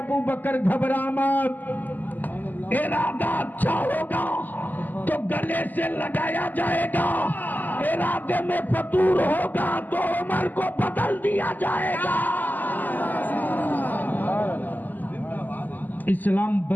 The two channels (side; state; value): right; late; 0.085 ms